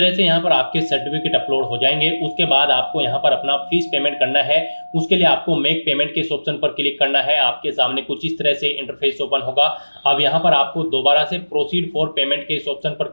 से यहाँ पर आपके सर्टिफिकेट अपलोड हो जाएंगे। उसके बाद आपको यहाँ पर अपना फीस पेमेंट करना है। उसके लिए आपको मेक पेमेंट के इस ऑप्शन पर क्लिक करना है। आपके सामने कुछ इस तरह से इंटरफेस ओपन होगा। अब यहाँ पर आपको दोबारा से प्रोसीड फॉर पेमेंट के इस ऑप्शन पर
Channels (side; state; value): both; inverted; correlation -1.00